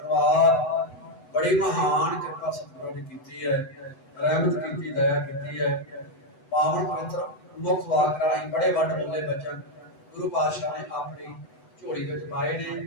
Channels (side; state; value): right; late; 8.0 ms